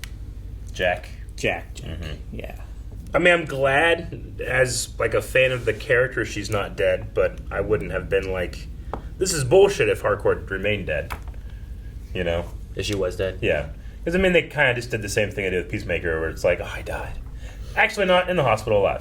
Jack. Jack. Yeah. I mean, I'm glad, as like a fan of the character, she's not dead, but I wouldn't have been like, this is bullshit if Harcourt remained dead. You know? If she was dead. Yeah. Because, I mean, they kind of just did the same thing I did with Peacemaker, where it's like, oh, I died. Actually, not in the hospital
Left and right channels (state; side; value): identical; both; correlation 1.00